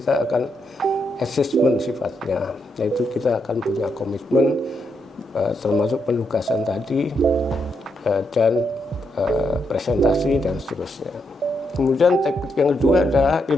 akan assessment sifatnya, yaitu kita akan punya komitmen termasuk penugasan tadi dan presentasi dan seterusnya. Kemudian teknik yang kedua adalah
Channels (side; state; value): both; normal; correlation 0.80